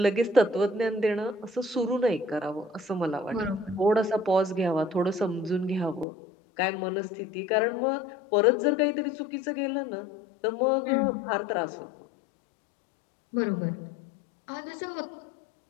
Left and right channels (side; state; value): right; drops out; at 6.1 s